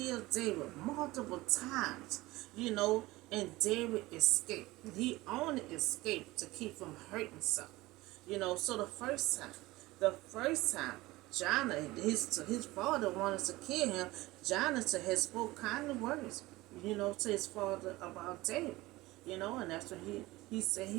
David multiple times, and David escaped. He only escaped to keep from hurting himself. So the first time, Jonathan, his father wanted to kill him. Jonathan had spoke kindly words, to his father about David, and that's when he said he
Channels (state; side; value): quieter; left; 19.5 dB